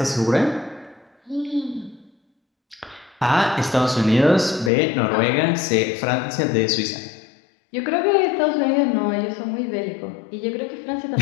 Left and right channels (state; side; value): drops out; right; at 4.7 s